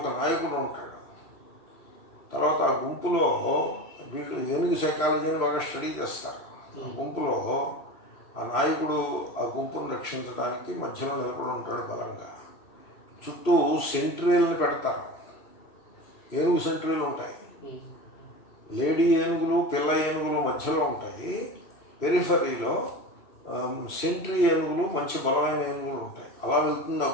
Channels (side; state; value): right; late; 3.0 ms